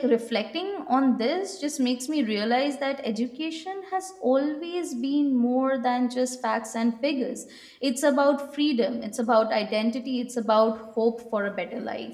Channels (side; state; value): both; identical; correlation 1.00